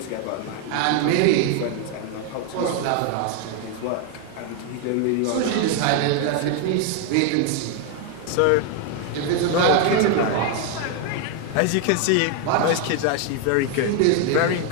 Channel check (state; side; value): different; both; correlation 0.01